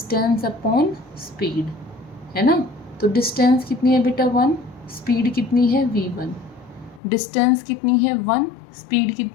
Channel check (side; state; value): right; drops out; at 7.0 s